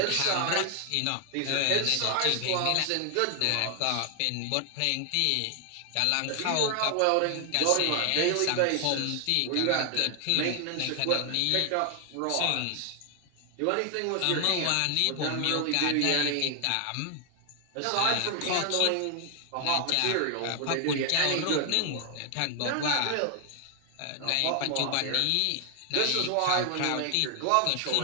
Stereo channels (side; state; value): both; different; correlation 0.00